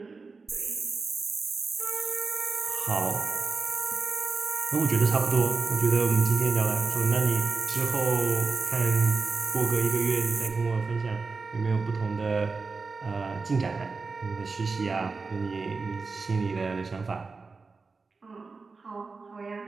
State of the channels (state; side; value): quieter; left; 4.3 dB